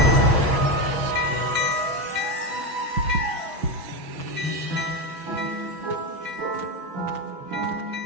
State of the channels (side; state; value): left; late; 6.1 ms